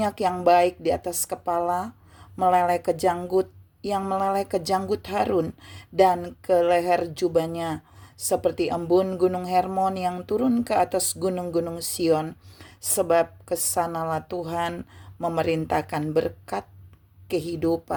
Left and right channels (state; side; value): identical; both; correlation 1.00